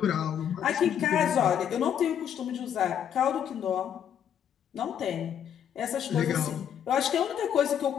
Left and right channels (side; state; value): right; quieter; 9.1 dB